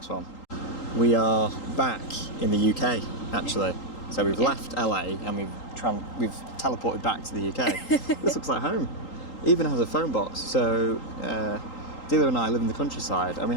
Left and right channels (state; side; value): late; right; 3.8 ms